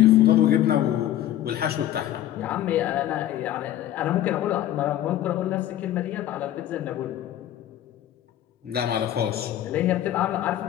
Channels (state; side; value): quieter; right; 12.6 dB